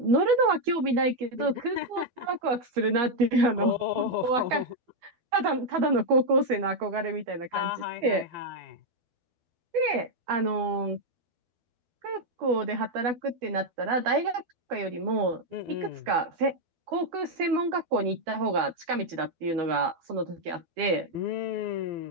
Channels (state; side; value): late; left; 13 ms